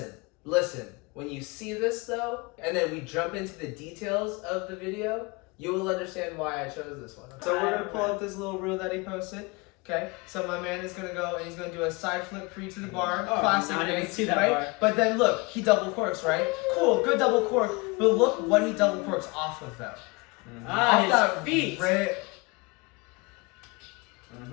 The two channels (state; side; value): quieter; right; 26.7 dB